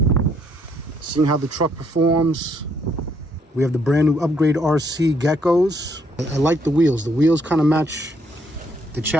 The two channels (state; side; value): normal; both; correlation 0.70